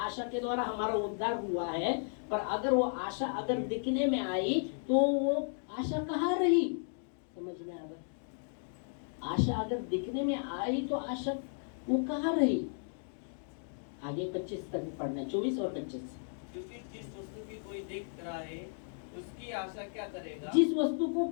आशा के द्वारा हमारा उद्धार हुआ है, पर अगर वो आशा अगर दिखने में आई तो वो आशा कहाँ रही। समझ में आ रहा? आशा अगर दिखने में आई तो आशा वो कहाँ रही। आगे 25 तक पढ़ना, 24 और 25। क्योंकि जिस वस्तु की कोई देख रहा है उसकी आशा क्या करेगा। जिस वस्तु को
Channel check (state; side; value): silent; right; digital silence